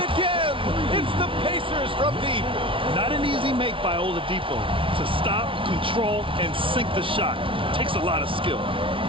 again, it's the Pacers from deep. Not an easy make by Oladipo. To stop, control, and sink the shot. Takes a lot of skill.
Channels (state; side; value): late; left; 0.25 ms